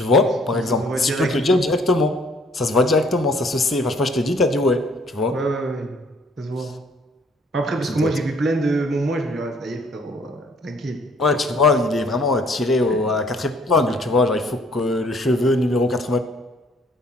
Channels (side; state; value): both; normal; correlation 0.61